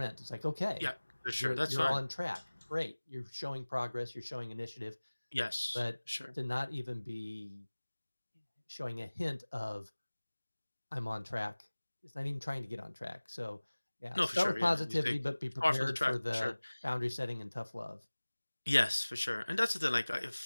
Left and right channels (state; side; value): inverted; both; correlation -1.00